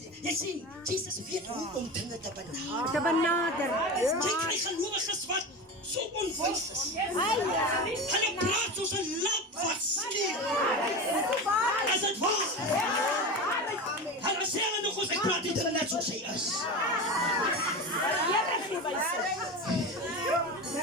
Hy sê, Jesus weet hoe om dinge te benader. Jy kry gelowiges wat so onwys is. Hulle praat soos 'n lamp wat skeer. Is dit waar? Hulle sê hulle nog ons, ek praat dit net soos hy is.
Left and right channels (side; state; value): both; normal; correlation 0.25